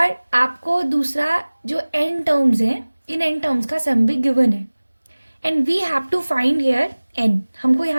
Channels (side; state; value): both; inverted; correlation -1.00